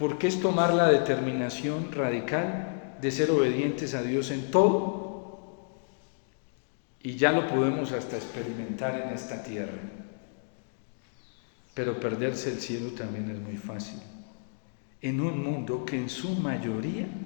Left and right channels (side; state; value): right; silent; digital silence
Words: es tomar la determinación radical de ser obedientes a Dios en todo, y ya lo podemos hasta experimentar en esta tierra. Pero perderse el cielo también es muy fácil, en un mundo que en su mayoría